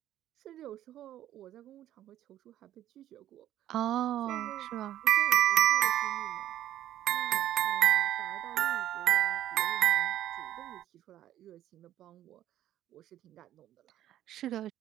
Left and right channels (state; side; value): quieter; left; 12.5 dB